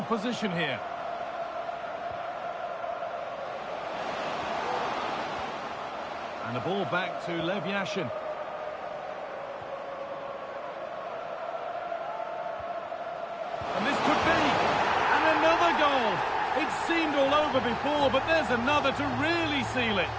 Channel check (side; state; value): both; identical; correlation 1.00